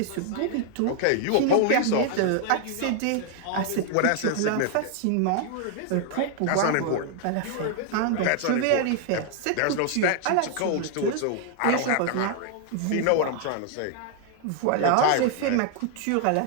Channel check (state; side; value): different; both; correlation 0.00